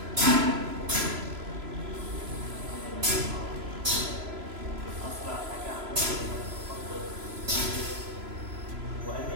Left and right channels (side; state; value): left; late; 3.0 ms